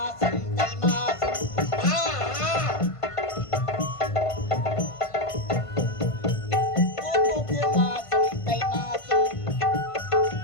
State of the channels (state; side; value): late; right; 1.5 ms